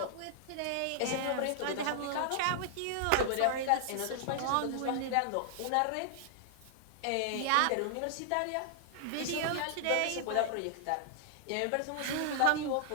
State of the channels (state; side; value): different; both; correlation -0.01